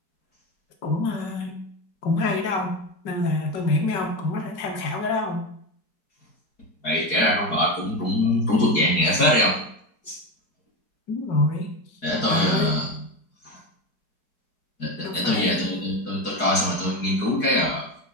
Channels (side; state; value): right; late; 4.7 ms